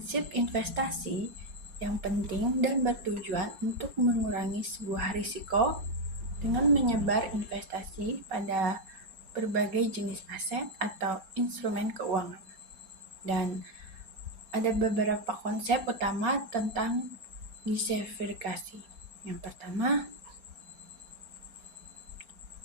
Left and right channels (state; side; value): late; left; 4.3 ms